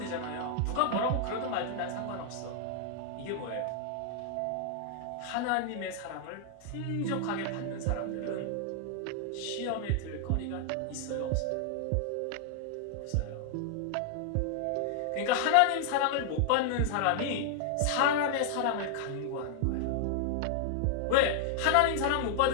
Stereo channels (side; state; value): both; different; correlation 0.00